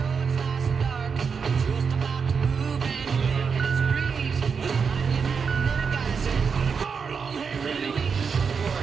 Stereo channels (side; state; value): left; quieter; 5.9 dB